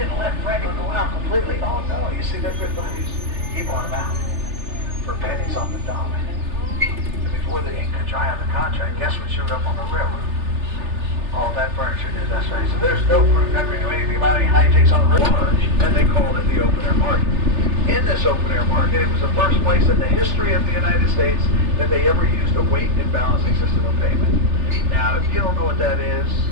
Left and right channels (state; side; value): late; left; 3.3 ms